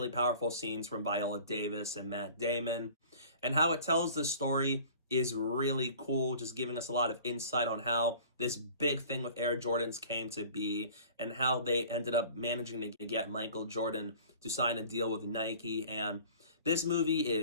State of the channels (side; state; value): both; inverted; correlation -0.46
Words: powerful scenes from Viola Davis and Matt Damon. And how it tells the story is really cool, just giving us a lot of insight on how this big thing with Air Jordans came to be and how they ended up managing to get Michael Jordan to sign a deal with Nike. And this movie